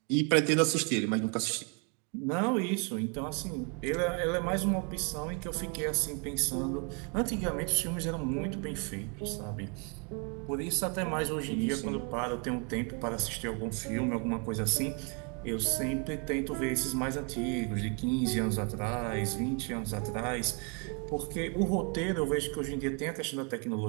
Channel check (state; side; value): quieter; left; 35.6 dB